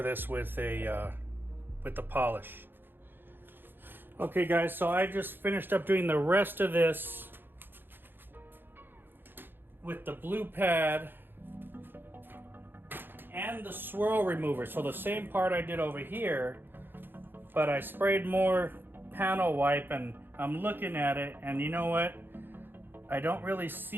this with the polish. Okay guys, so I just finished up doing the rest of this with the blue pad and the swirl remover. So the same part I did over here, but I sprayed more panel wipe, and I'm looking at it, and you know what? I don't really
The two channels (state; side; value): late; left; 0.098 ms